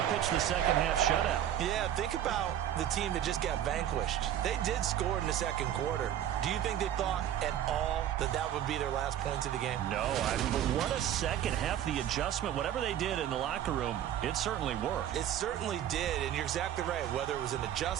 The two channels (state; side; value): quieter; left; 10.9 dB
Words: pitched the second-half shutout. yeah, think about the team that just got vanquished. They did score in the 2nd quarter. Do you think they thought at all that that would be their last points of the game? No, but what a second half. The adjustment, whatever they did in the locker room, it certainly worked. It certainly did, and you're exactly right. Whether it was an